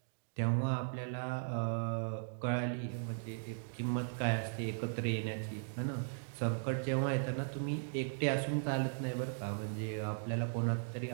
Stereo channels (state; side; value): silent; left; digital silence